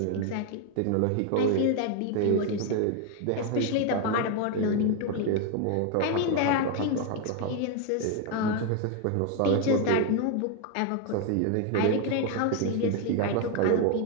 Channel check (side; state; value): both; different; correlation 0.01